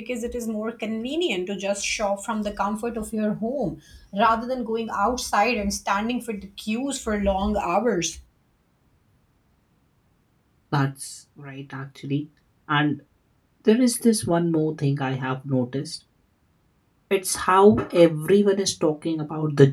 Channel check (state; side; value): identical; both; correlation 1.00